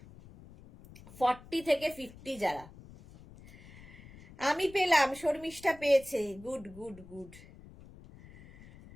40 থেকে 50 যারা, আমি পেলাম, শর্মিষ্ঠা পেয়েছে, গুড গুড গুড।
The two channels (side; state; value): left; noise; rumble, 20 dB below the sound